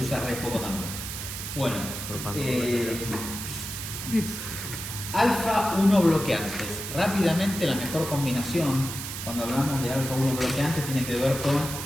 re poco también. Bueno, alfa-1 bloqueantes. Rápidamente, la mejor combinación cuando hablamos de alfa-1 bloqueantes tiene que ver con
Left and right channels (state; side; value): noise; right; hiss, 7 dB below the sound